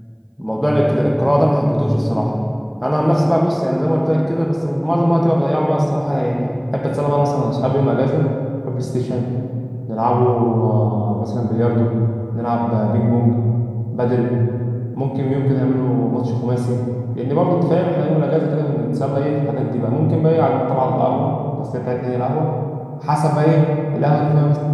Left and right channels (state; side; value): identical; both; correlation 1.00